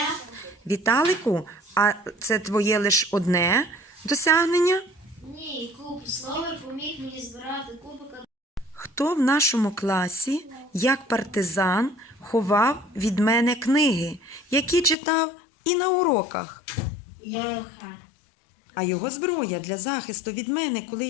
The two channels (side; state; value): right; drops out; at 15.0 s